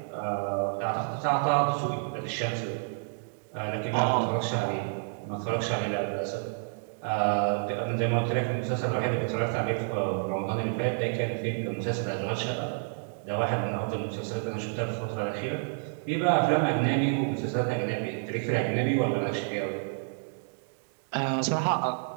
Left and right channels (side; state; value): left; silent; digital silence